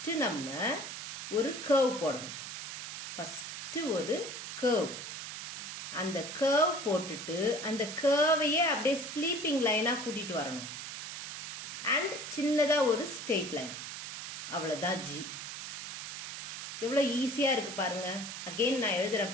நம்ம ஒரு கர்வ் போடணும். ஃபர்ஸ்ட் ஒரு கர்வ். அந்த கர்வ் போட்டுட்டு அந்த கர்வையே அப்படியே ஸ்லீப்பிங் லைனா கூட்டிட்டு வரணும். அண்ட் சின்னதா ஒரு ஸ்ட்ரெயிட் லைன். அவ்வளவுதான் ஜி. எவ்வளவு ஈஸியா இருக்கு பாருங்க. அகைன் நான்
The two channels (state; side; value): noise; right; hiss, 8 dB below the sound